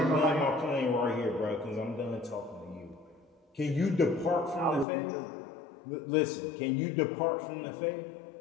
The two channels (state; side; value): drops out; right; at 4.9 s